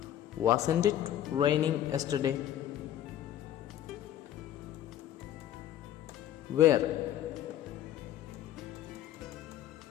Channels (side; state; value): right; quieter; 11.7 dB